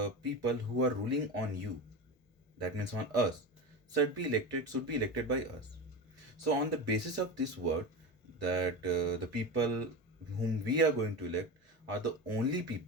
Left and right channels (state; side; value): normal; both; correlation 0.24